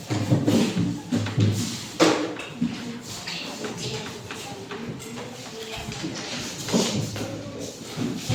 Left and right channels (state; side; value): identical; both; correlation 1.00